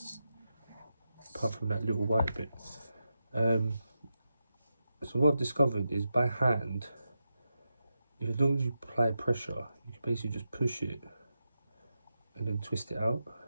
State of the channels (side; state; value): both; inverted; correlation -0.88